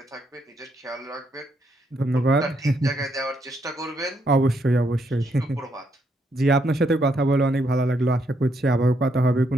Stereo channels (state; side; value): normal; both; correlation 0.75